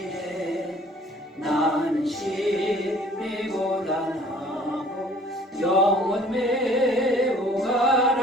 나는 심히 고단하고 영혼 매우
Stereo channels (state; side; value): normal; both; correlation 0.53